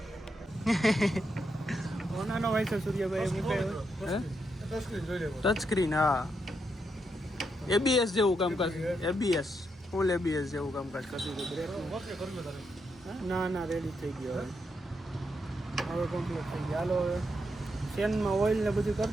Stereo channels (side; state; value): both; normal; correlation 0.81